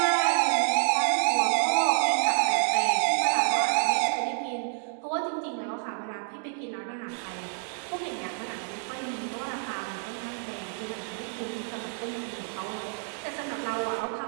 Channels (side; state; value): left; silent; 55 dB below the other